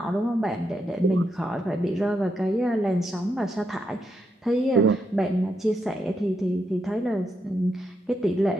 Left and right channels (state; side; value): normal; both; correlation 0.81